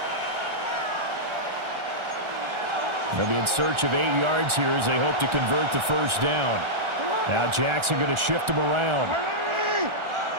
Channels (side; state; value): left; late; 1.4 ms